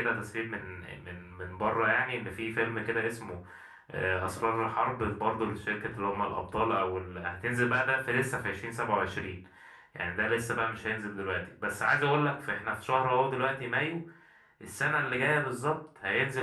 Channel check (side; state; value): both; identical; correlation 1.00